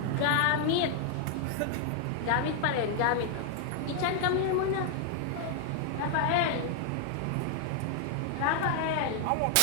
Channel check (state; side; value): different; both; correlation 0.00